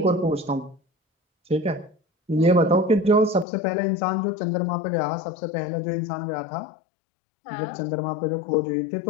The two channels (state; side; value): drops out; right; at 3.5 s